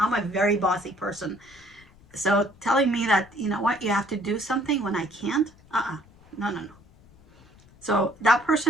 a very bossy person. So telling me that, you know what, you have to do something when I can't, no, no, no. So that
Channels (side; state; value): left; noise; rumble, 27 dB below the sound